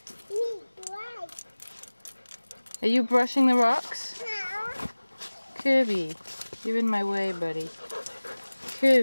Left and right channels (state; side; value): inverted; both; correlation -1.00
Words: Are you brushing the rocks? Kirby, you're in my way, buddy.